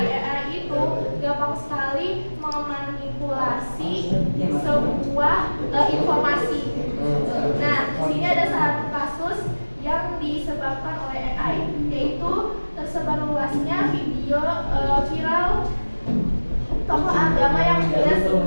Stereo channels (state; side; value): inverted; both; correlation -1.00